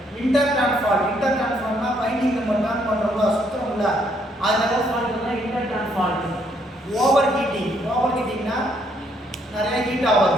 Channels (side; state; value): both; normal; correlation 0.70